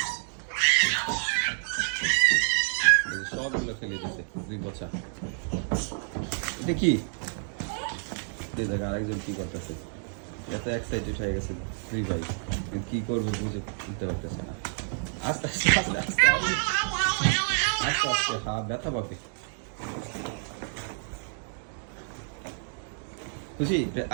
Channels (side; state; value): left; silent; 59 dB below the other